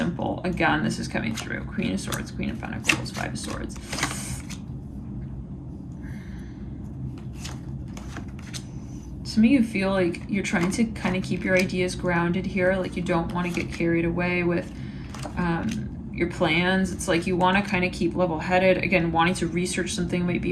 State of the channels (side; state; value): both; identical; correlation 1.00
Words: Again, this is coming through. Queen of Swords, Queen of Pentacles, 5 of Swords. Some of you feel like you're trying to kind of keep your ideas grounded here. Like you don't want to get carried away with your plans. It's like you want to kind of keep level-headed. Again, wanting to research something might